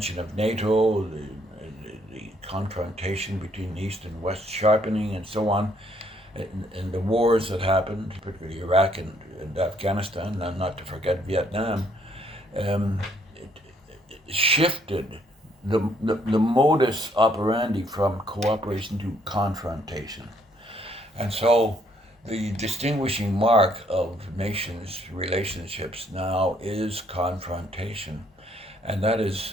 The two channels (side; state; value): both; normal; correlation 0.67